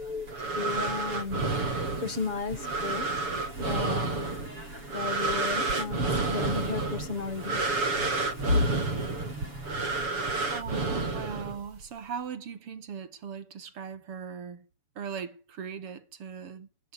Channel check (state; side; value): late; left; 7.0 ms